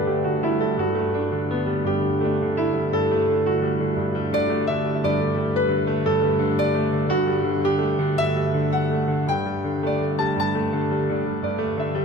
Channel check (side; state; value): both; normal; correlation 0.52